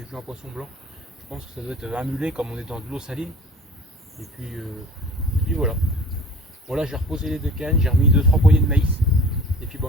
un poisson blanc. Je pense que ça doit être un mulet comme on est dans de l'eau saline. Et puis voilà. Bon là j'ai reposé les 2 cannes, j'ai remis 2-3 poignées de maïs. Et puis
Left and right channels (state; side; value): normal; both; correlation 0.44